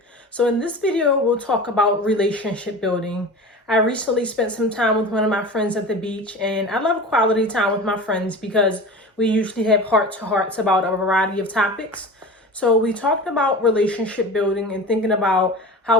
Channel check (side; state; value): both; normal; correlation 0.33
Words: So in this video, we'll talk about relationship building. I recently spent some time with one of my friends at the beach, and I love quality time with my friends because we usually have heart-to-hearts about a variety of topics. So we talked about relationship building and thinking about